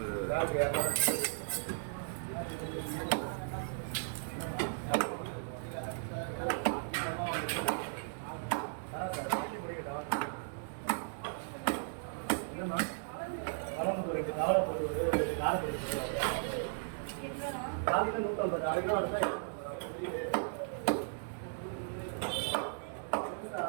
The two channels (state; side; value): silent; left; digital silence